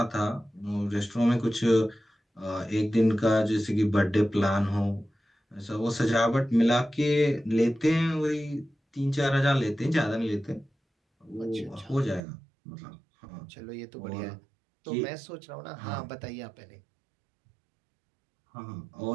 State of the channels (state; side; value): drops out; left; at 12.2 s